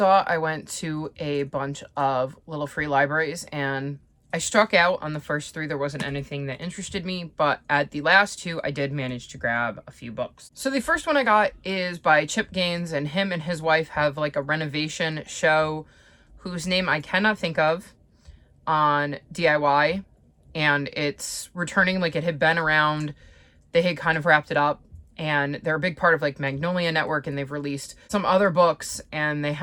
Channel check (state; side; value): identical; both; correlation 1.00